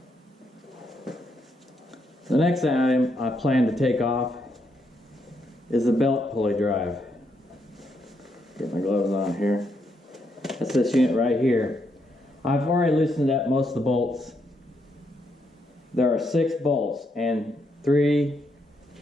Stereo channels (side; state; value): both; normal; correlation 0.77